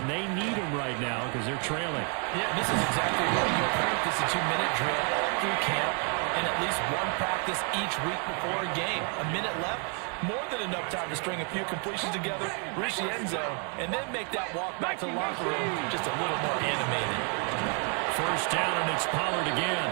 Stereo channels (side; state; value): left; quieter; 38.8 dB